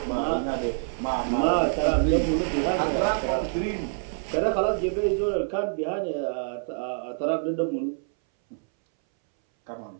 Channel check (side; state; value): left; silent; 61 dB below the other